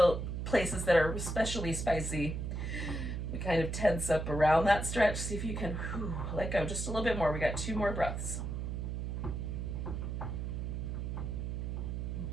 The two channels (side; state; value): right; noise; hum, 3 dB below the sound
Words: places that are especially spicy. We kind of tense up around that stretch. See if you can let go just a little bit more. We got 2 more breaths. All